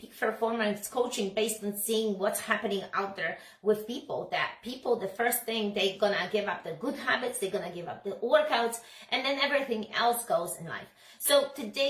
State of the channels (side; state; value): both; identical; correlation 1.00